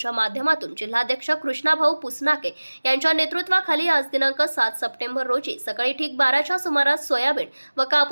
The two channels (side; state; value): both; inverted; correlation -1.00